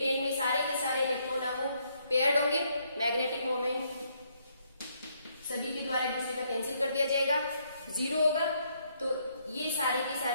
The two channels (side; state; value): both; inverted; correlation -0.72